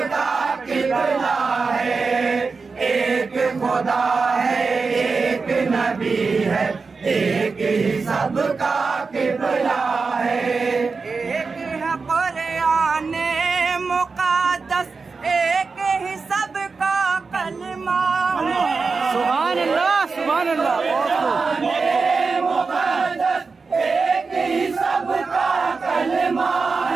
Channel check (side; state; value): left; quieter; 4.5 dB